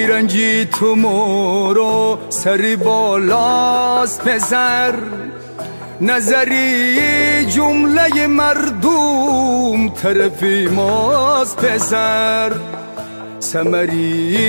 رنجی تو مورو سری بالاست پسر نظری جمله مردم طرفی ماست پسر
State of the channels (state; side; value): inverted; both; correlation -1.00